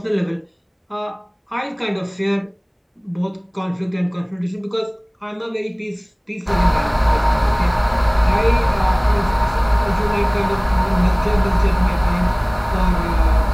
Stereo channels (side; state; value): both; identical; correlation 1.00